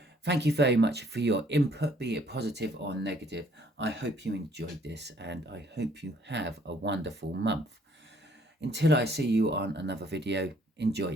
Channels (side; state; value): both; normal; correlation 0.63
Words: thank you very much for your input, be it positive or negative. I hope you enjoyed this and I hope you have a wonderful month. Until I see you on another video, enjoy